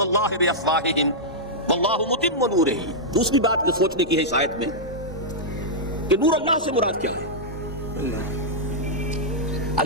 بافواہہم واللہ متم نورہ۔ دوسری بات جو سوچنے کی ہے اس آیت میں کہ نور اللہ سے مراد کیا ہے؟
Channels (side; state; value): both; normal; correlation -0.08